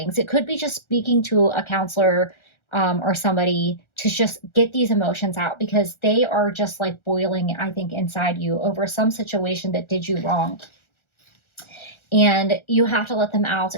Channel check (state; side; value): late; right; 1.4 ms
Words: it could be just speaking to a counselor or somebody to just get these emotions out because they are just like boiling, I think, inside you over some situation that did you wrong. And you have to let them out